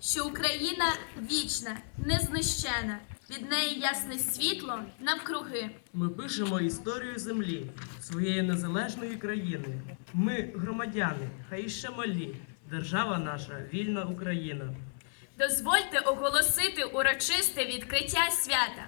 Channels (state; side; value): silent; right; 56 dB below the other